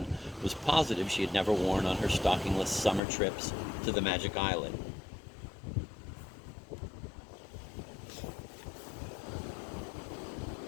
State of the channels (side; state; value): right; drops out; at 3.0 s